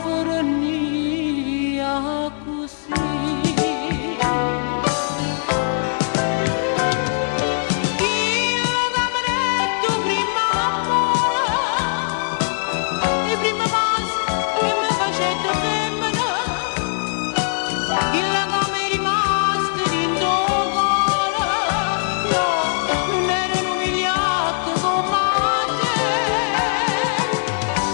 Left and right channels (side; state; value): right; silent; digital silence